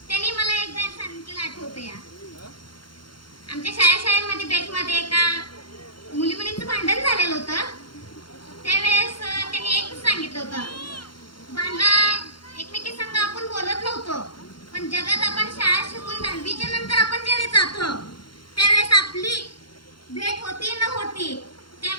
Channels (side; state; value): right; late; 0.72 ms